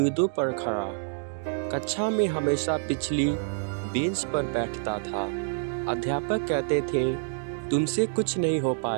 पर खड़ा। कक्षा में हमेशा पिछली बेंच पर बैठता था। अध्यापक कहते थे, तुमसे कुछ नहीं हो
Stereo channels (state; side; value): silent; left; digital silence